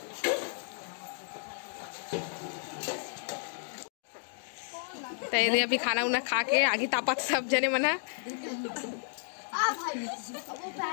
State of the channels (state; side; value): silent; right; digital silence